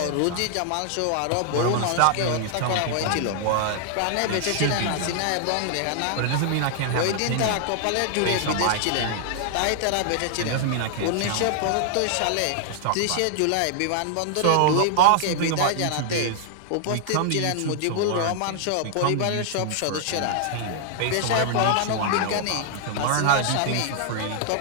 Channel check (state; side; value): different; both; correlation -0.01